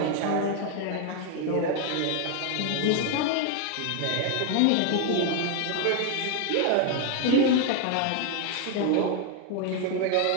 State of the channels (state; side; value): different; both; correlation 0.00